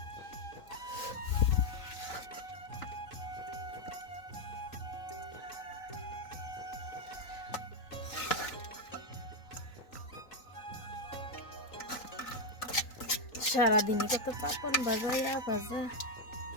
সারাদিনই কত পাপন ভাজা ভাজা।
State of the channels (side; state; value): right; late; 3.9 ms